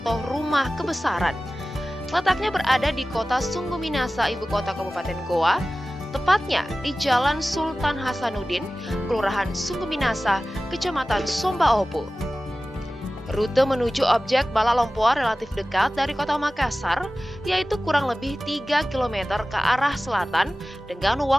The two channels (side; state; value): both; normal; correlation 0.96